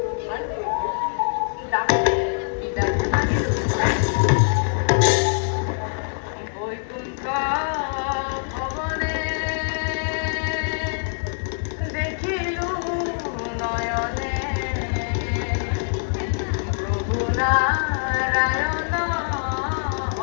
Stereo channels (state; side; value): silent; right; digital silence